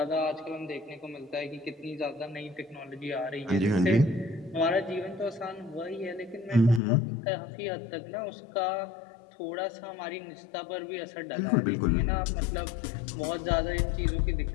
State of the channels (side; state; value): right; drops out; at 6.8 s